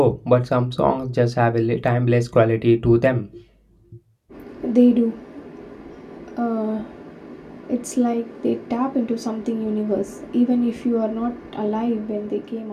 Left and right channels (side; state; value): both; identical; correlation 1.00